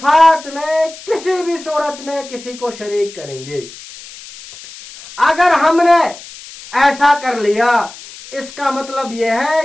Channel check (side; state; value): left; noise; hiss, 17 dB below the sound